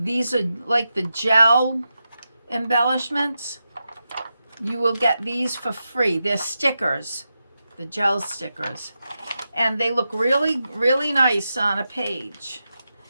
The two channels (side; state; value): both; inverted; correlation -0.89